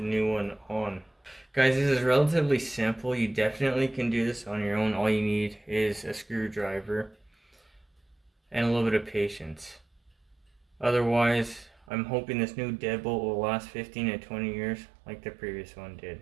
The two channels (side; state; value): left; drops out; at 11.9 s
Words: one on. Guys, this is relatively simple. You definitely can do this on your own. All you need is a screwdriver and a little bit of patience. Otherwise, I'm hoping this new deadbolt will last 15 to 20 years like the previous one